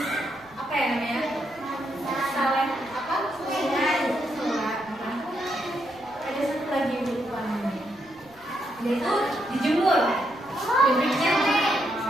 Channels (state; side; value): noise; right; rumble, 27 dB below the sound